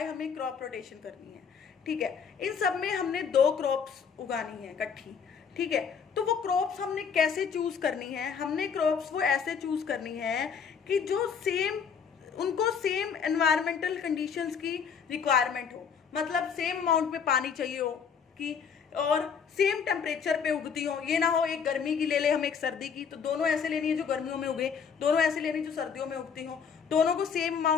हमें क्रॉप रोटेशन करनी है, ठीक है। इन सब में हमने दो क्रॉप्स उगानी है इकट्ठी, ठीक है। तो वो क्रॉप्स हमने कैसे चूज करनी है? हमने क्रॉप्स वो ऐसे चूज करनी है कि जो उनको सेम एनवायरमेंटल कंडीशंस की रिक्वायरमेंट हो, मतलब सेम अमाउंट में पानी चाहिए हो कि और सेम टेम्परेचर पे उगती हो। ये ना हो एक गर्मी की ले ले हम, एक सर्दी की, तो दोनों ऐसे लेनी है जो गर्मियों में उगे, दोनों ऐसे लेनी जो सर्दियों में उगती हो, दोनों को सेम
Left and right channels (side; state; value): right; quieter; 6.6 dB